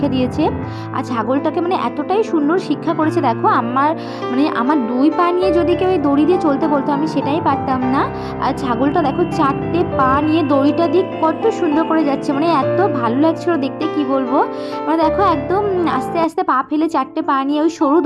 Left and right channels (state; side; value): identical; both; correlation 1.00